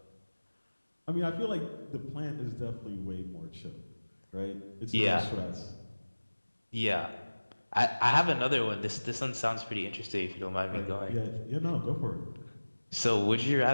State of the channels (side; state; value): both; inverted; correlation -1.00